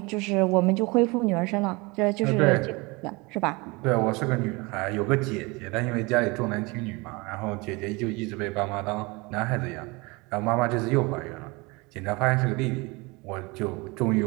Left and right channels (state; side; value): quieter; left; 25.8 dB